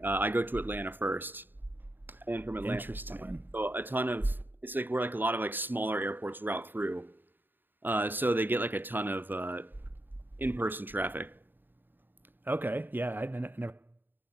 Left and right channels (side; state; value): left; late; 0.093 ms